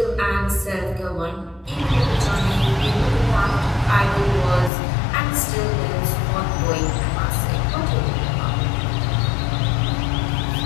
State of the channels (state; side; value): drops out; right; at 4.7 s